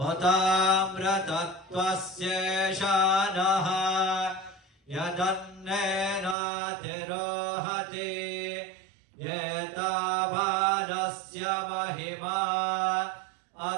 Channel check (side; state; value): left; drops out; at 6.4 s